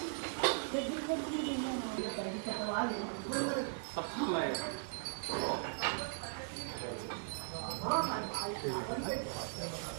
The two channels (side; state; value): left; silent; 52 dB below the other